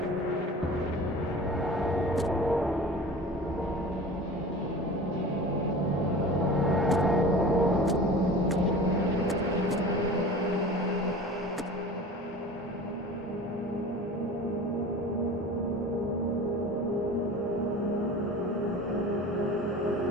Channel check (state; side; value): normal; both; correlation 0.38